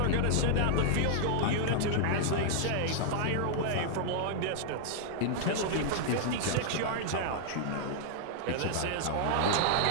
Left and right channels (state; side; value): different; both; correlation -0.01